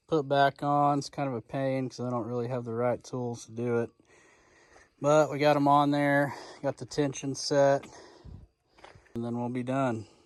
put back on. It's kind of a pain because I don't really have the right tools to do it. But we got them on there, got the tension set, and then we'll be done.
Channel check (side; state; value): both; identical; correlation 1.00